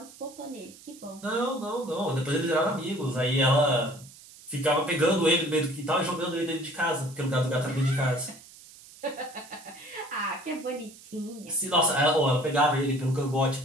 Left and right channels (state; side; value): noise; right; hiss, 21 dB below the sound